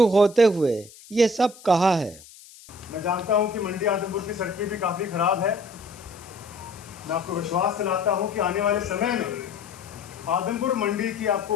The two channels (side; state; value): left; noise; hiss, 21 dB below the sound